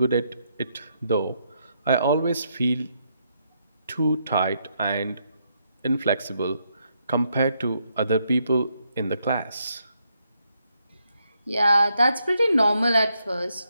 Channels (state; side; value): inverted; both; correlation -0.77